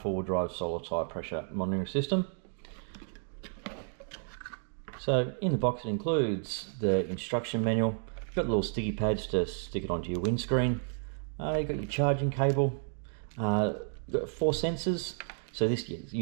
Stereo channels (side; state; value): left; silent; 57 dB below the other